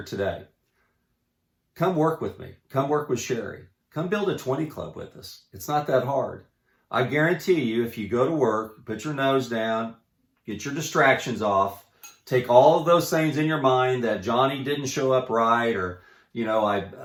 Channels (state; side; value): identical; both; correlation 1.00